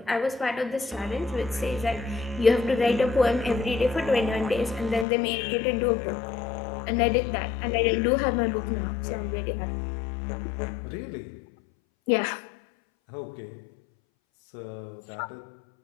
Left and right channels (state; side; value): drops out; right; at 5.1 s